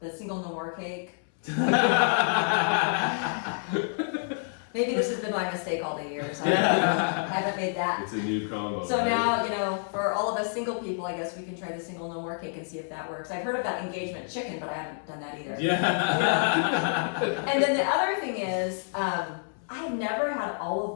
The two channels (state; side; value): silent; right; 59 dB below the other